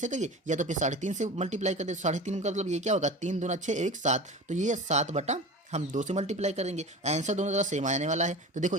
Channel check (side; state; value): both; normal; correlation 0.34